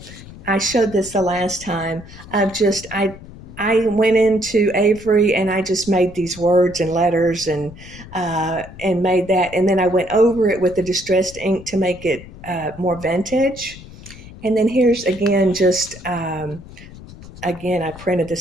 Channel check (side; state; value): left; noise; rumble, 17 dB below the sound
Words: I showed this the last time of just, I went into Avery and I just made these words and letters, and made that, and then I went over it with the distressed ink to make it more vintage. And then here's again, just again, I printed the